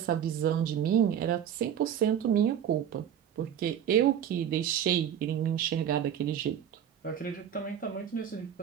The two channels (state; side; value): quieter; left; 9.3 dB